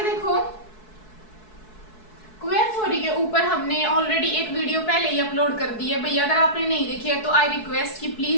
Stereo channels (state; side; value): late; right; 4.6 ms